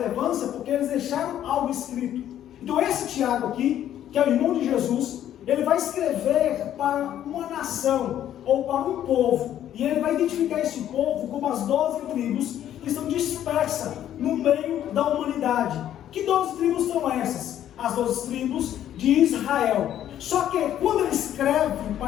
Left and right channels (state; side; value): quieter; right; 11.2 dB